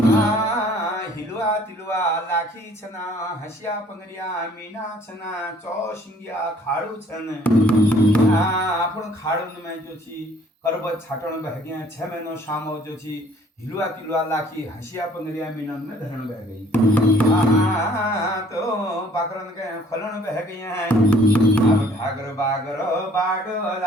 हिलुआ तिलुआ लाखी छना हसिया पंगरिया मीना छना चौसिंगिया खाड़ू छन आपण खाड़ू में जो छी करबत छाटण बहगिया 6 महीनो शामो जो छी हिलुआ तिलुआ लाखी हसिया पंगरिया मीनन में धरण बह गई तो बाकरन के खलन बह गई हैं अब ढागर बागर बाडो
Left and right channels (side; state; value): both; normal; correlation 0.58